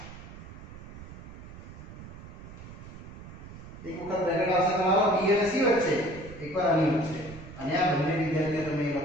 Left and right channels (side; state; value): right; noise; rumble, 14 dB below the sound